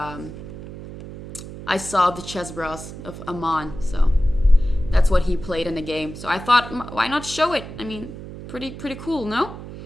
I saw the chess bros of Aman, so that's what he played in the game. So I thought, why not show it? I mean, pretty cool, no?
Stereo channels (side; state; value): right; noise; hum, 12 dB below the sound